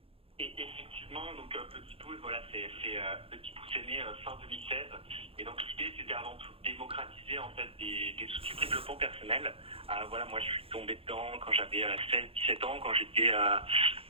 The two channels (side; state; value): left; late; 0.27 ms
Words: Et effectivement, donc Petit Pouce, voilà, Petit Pouce est né fin 2016. Et donc l'idée, c'était avant tout de démocratiser en fait des outils de développement personnel. Voilà, moi je suis tombé dedans quand j'avais 16-17 ans, quand j'étais